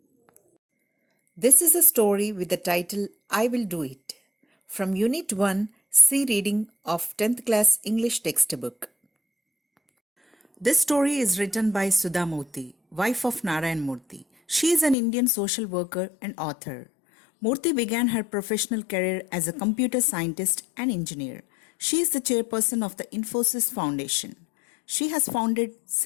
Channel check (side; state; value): right; drops out; at 15.0 s